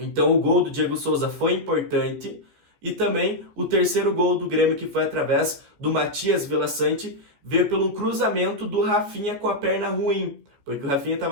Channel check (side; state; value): left; late; 14 ms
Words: o gol do Diego Souza foi importante. E também o terceiro gol do Grêmio, que foi através do Matias Villasanti, veio pelo cruzamento do Rafinha com a perna ruim, porque o Rafinha